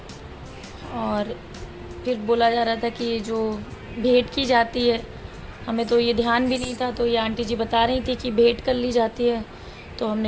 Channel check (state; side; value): identical; both; correlation 1.00